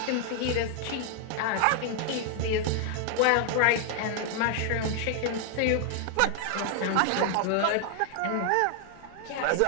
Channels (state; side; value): different; both; correlation 0.00